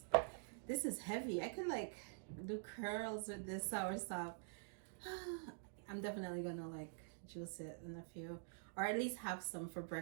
This is heavy. I could like do curls with this soursop. I'm definitely gonna like juice it in a few, or at least have some for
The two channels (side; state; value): left; silent; digital silence